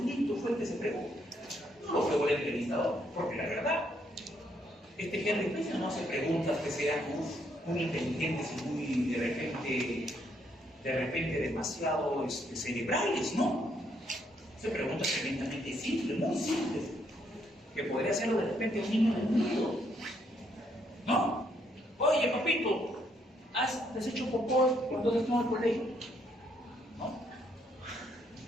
fue el que se fregó. No lo fregó el entrevistador, porque la verdad, este Henry Spencer no hace preguntas que sean muy inteligentes y muy de repente demasiado cerebrales, ¿no? Hace preguntas tremendamente simples, muy simples, que podría hacerlo de repente un niño del mundo, ¿no? Oye, papito, ¿has hecho popó cuando estás en el colegio? ¿No?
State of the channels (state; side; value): normal; both; correlation 0.72